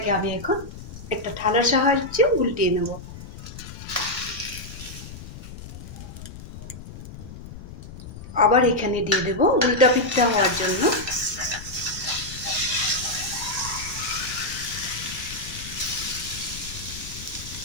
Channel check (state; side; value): noise; left; rumble, 13 dB below the sound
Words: আমি এখন একটা থালার সাহায্যে উল্টিয়ে নেব। আবার এখানে দিয়ে দেব উল্টা পিঠা হওয়ার জন্য।